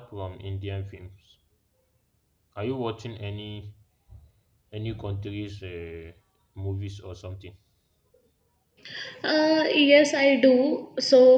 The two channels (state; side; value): identical; both; correlation 1.00